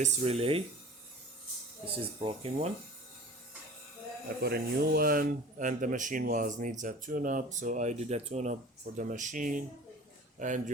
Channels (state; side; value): normal; both; correlation 0.41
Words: relay. This is broken one. I put a new one, and the machine needs a tune-up, so I did a tune-up for the machine. And